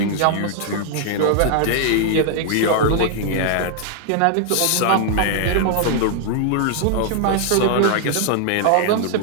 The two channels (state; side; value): different; both; correlation 0.00